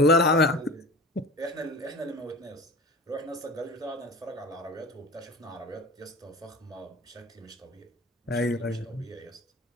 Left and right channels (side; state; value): both; normal; correlation 0.36